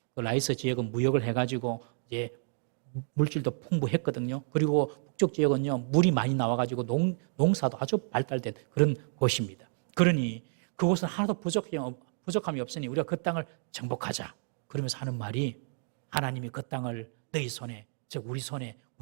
그 라이스 지역은 무역을 해가지고 이제 물질도 풍부했거든요. 그리고 북쪽 지역은요 물이 많이 나와가지고 농사도 아주 발달된 그런 곳입니다. 그러니 그곳은 하나도 부족함이 없으니 우리가 그 땅을 정복하자. 그러면서 하는 말이 하나님이 그 땅을 너희 손에, 즉 우리 손에,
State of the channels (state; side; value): silent; left; digital silence